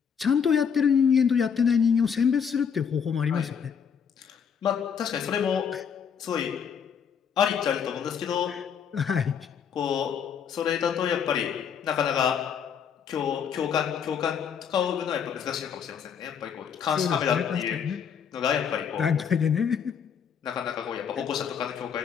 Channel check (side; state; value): right; quieter; 7.3 dB